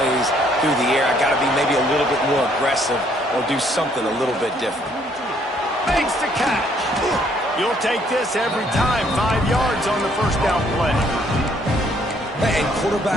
through the air. I got to be maybe a little bit more aggressive or do something a little bit different. Makes the catch. You'll take this every time. 5 yards on the first down play. And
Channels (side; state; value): both; normal; correlation 0.66